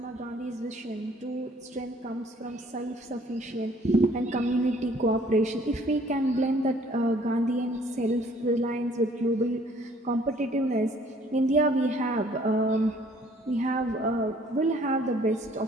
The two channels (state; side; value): normal; both; correlation 0.59